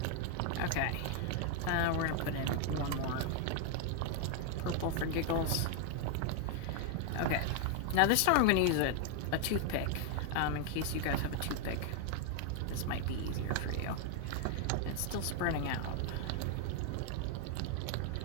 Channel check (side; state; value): both; different; correlation 0.00